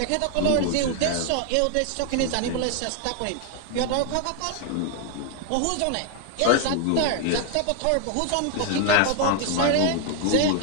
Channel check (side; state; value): both; different; correlation 0.01